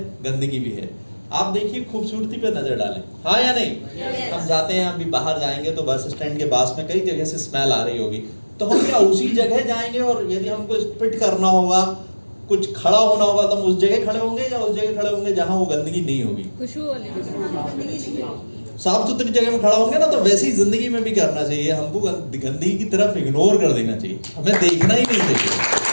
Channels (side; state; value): both; inverted; correlation -1.00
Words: गंदगी भी है। आप देखिए, खूबसूरती पे नजर डालें, हाँ या नहीं? हम जाते हैं, अभी बाहर जाएंगे तो बस स्टैंड के पास में कई जगह से स्मेल आ रही होगी, तो हम क्या उसी जगह जाएंगे? और यदि हमको स्पिट करना होगा, कुछ खड़ा होना होगा, तो हम उस जगह खड़े होंगे या उस जगह खड़े होंगे जहां वो गंदगी नहीं होगी? साफ सुथरी जगह में खड़ा होंगे ना। तो वैसे ही जिंदगी में भी करना चाहिए हमको, गंदगी की तरफ इग्नोर कर देना चाहिए, हमें देखना ही नहीं चाहिए।